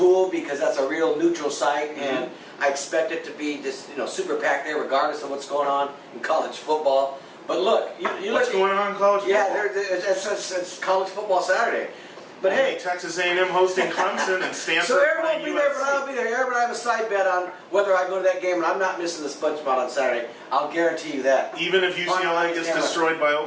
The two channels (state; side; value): identical; both; correlation 1.00